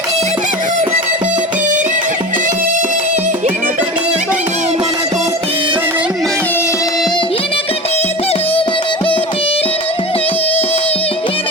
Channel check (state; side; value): normal; both; correlation 0.30